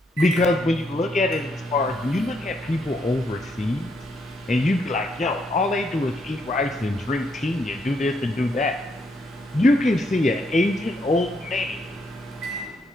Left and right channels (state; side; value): normal; both; correlation 0.75